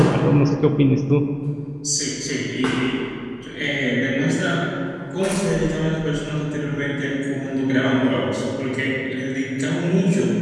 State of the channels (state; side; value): identical; both; correlation 1.00